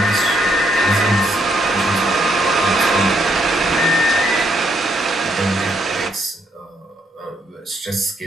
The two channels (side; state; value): both; normal; correlation 0.74